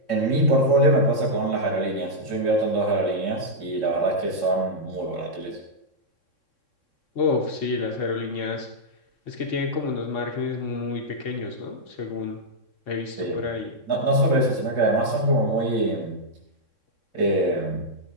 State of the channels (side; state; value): right; late; 3.6 ms